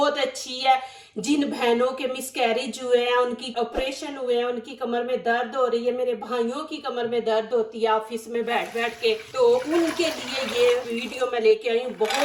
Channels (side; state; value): both; identical; correlation 1.00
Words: अच्छी है। जिन बहनों के मिसकैरेज हुए हैं, उनकी ऑपरेशन हुए हैं, उनकी कमर में दर्द हो रही है, मेरे भाइयों की कमर में दर्द होती है ऑफिस में बैठ बैठ के, तो उनके लिए ये वीडियो मैं लेके आई हूँ।